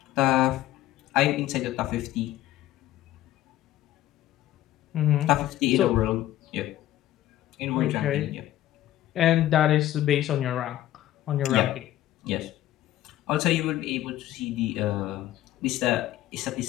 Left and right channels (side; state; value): right; quieter; 14.0 dB